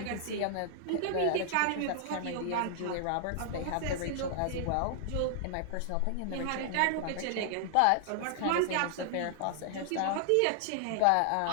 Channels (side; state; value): both; different; correlation -0.01